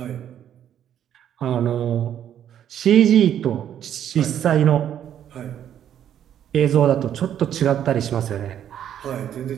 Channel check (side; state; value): left; quieter; 10.1 dB